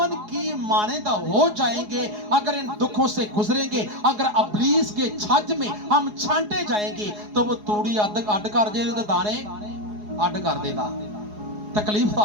की मानंद हो जाएंगे अगर इन दुखों से गुजरेंगे। अगर अबलीस के छज में हम छांटे जाएंगे तो वो तूड़ी अड कर दे, दाने अड कर देगा, तकलीफ तो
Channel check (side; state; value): left; late; 4.8 ms